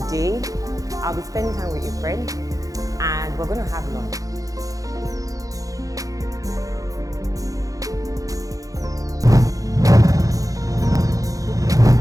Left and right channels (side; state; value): left; late; 0.17 ms